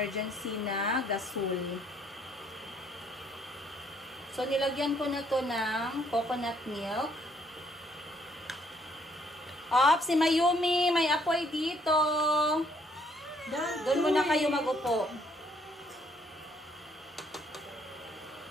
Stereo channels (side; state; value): both; normal; correlation 0.67